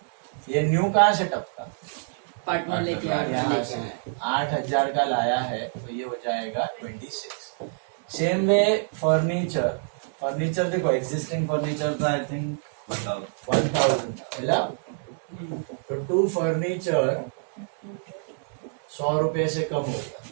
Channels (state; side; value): silent; left; digital silence